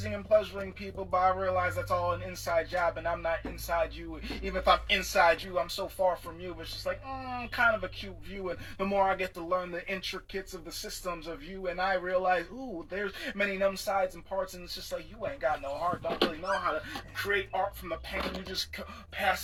and pleasuring people, but I realize that's all an inside job, and I'm not inside you. Even if I'm inside you, I'm so far from you. It's just like, kind of a cute view. And the more I get to learn the intricacies of the systems of you, and I realize, ooh, there's many numb sides and parts, and it's just like, you ain't got no heart, don't really know how to create art from the pain. You just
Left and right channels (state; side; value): identical; both; correlation 1.00